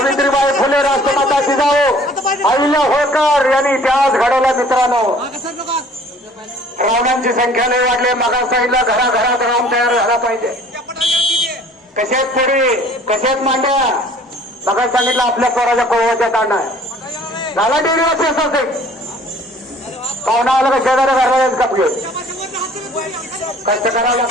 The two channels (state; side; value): normal; both; correlation 0.52